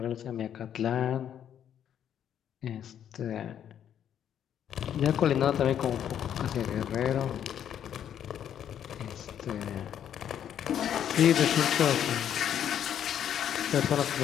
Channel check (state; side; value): quieter; right; 9.7 dB